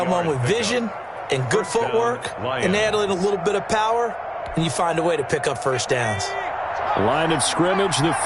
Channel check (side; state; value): both; identical; correlation 1.00